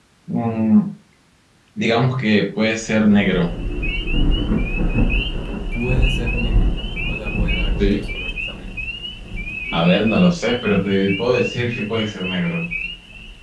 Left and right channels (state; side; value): identical; both; correlation 1.00